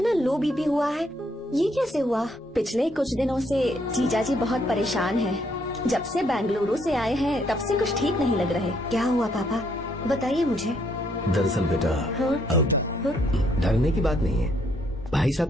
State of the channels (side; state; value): both; normal; correlation 0.71